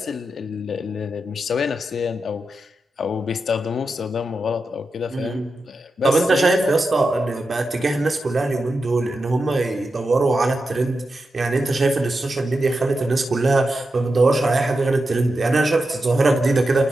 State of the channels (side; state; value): both; normal; correlation 0.89